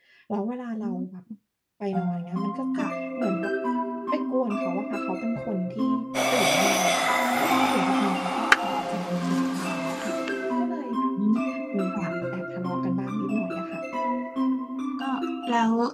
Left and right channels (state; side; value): identical; both; correlation 1.00